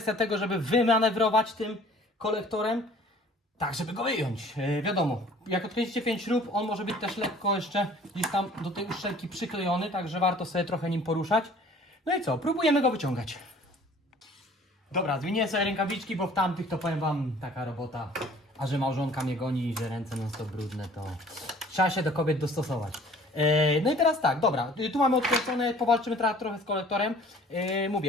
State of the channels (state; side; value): normal; both; correlation 0.51